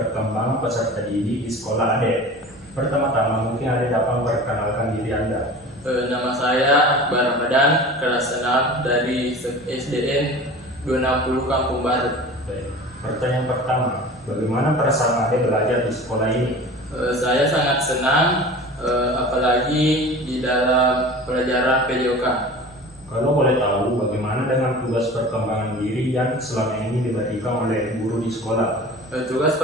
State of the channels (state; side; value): normal; both; correlation 0.38